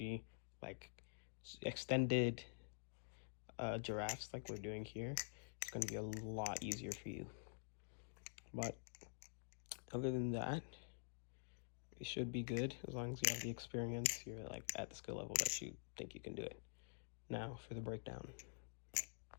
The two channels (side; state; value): right; silent; digital silence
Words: like extended giraffes like we're doing here, it's going to be a lot easier for you. But other than that, it should be good as long as you have the experience. You're like at the skill level that you think you can do it. Now for the breakdown.